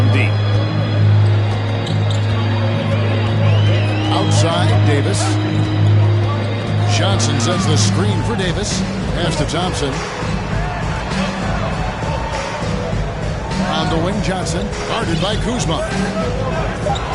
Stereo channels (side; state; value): both; identical; correlation 1.00